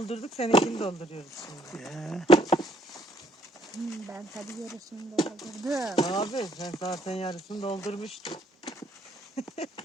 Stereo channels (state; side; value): normal; both; correlation 0.66